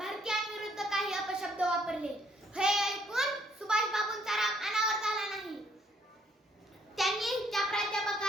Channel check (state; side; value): normal; both; correlation 0.67